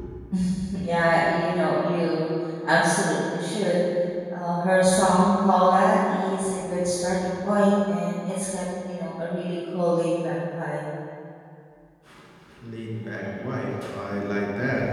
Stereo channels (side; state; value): both; identical; correlation 1.00